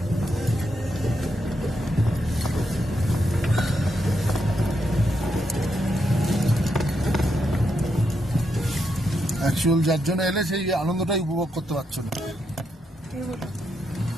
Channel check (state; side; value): normal; both; correlation 0.82